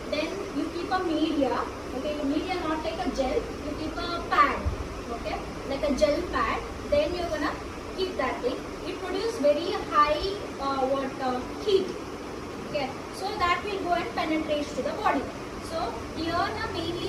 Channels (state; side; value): identical; both; correlation 1.00